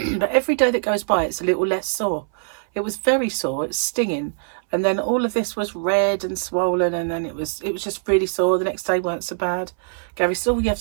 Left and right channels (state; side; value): silent; left; 61 dB below the other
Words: every day that goes by, it's a little less sore. It was very sore. It's stinging. And then all of this was red and swollen, and then it was just really sore. The next day weren't so bad. Gary said, "Oh, you have